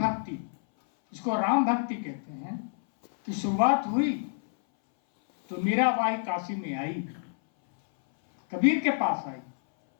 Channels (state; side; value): silent; right; 59 dB below the other